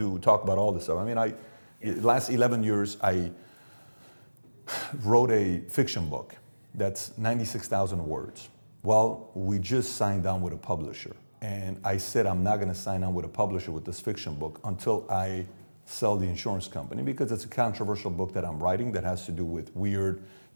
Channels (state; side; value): inverted; both; correlation -1.00